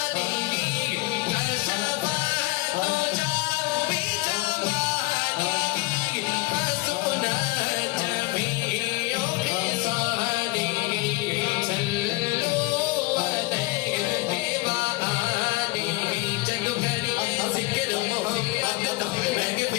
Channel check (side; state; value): right; quieter; 22.6 dB